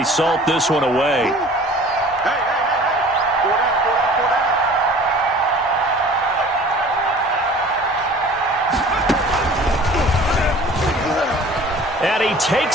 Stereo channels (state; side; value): normal; both; correlation 0.46